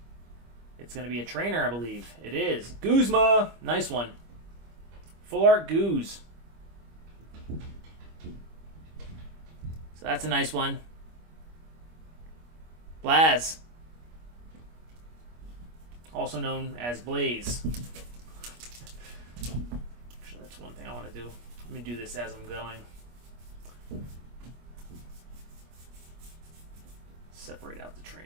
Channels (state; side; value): late; left; 25 ms